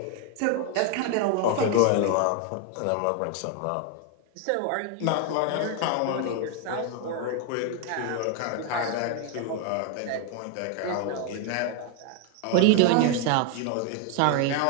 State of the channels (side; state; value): both; different; correlation 0.01